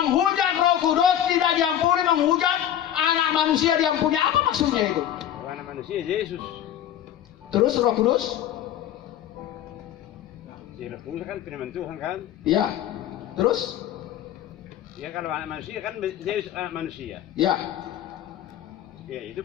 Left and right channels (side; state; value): right; quieter; 10.9 dB